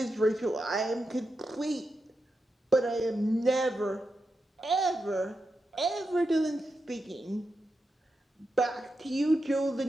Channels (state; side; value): normal; both; correlation 0.88